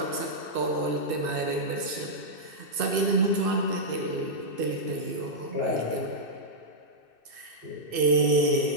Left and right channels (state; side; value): late; left; 2.6 ms